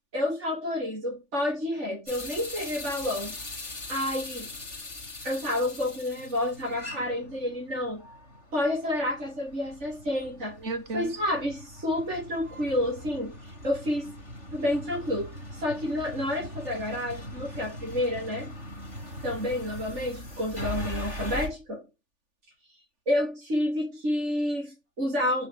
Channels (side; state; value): left; late; 3.4 ms